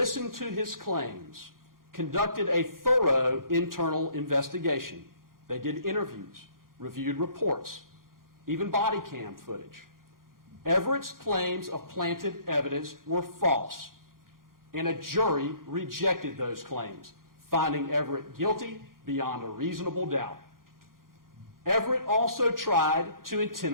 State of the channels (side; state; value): left; late; 0.91 ms